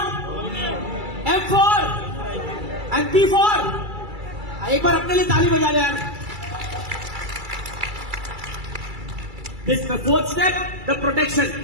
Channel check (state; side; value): late; left; 2.3 ms